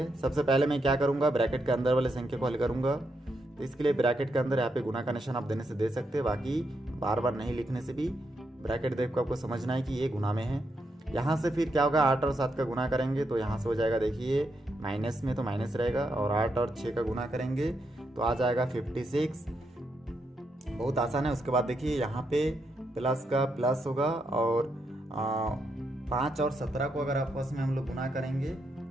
सबसे पहले मैं क्या करूँगा, ब्रैकेट के अंदर वाले संख्या को हल करूँगा। तो इसके लिए ब्रैकेट के अंदर यहाँ पे गुना का निशान आप देने से दे सकते हैं, बाकी बार बार नहीं लिखने से भी ब्रैकेट देख को आपको समझना है कि ये गुना में है। यहाँ से फिर क्या होगा, 8 और 7 का गुना करेंगे तो यहाँ से हो जाएगा देखिए माइनस में तो माइनस रहेगा, और 8 और 6 का गुना करेंगे तो आ जाएगा 56। बहुत आसान है। उसके बाद देखिए यहाँ पे प्लस का प्लस होगा, और 5 और 17 को अगर आपस में हम लोग गुना करेंगे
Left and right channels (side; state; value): both; normal; correlation 0.81